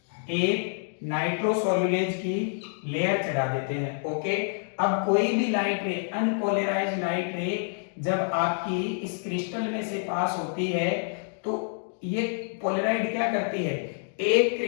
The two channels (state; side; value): silent; right; 60 dB below the other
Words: एक नाइट्रोसोल्यूलेज की लेयर चढ़ा देते हैं। ओके, अब कोई भी लाइट रे, अनपोलराइज्ड लाइट रे जब आपकी इस क्रिस्टल में से पास होती है, तो ये पोलराइड क्या करती है, एक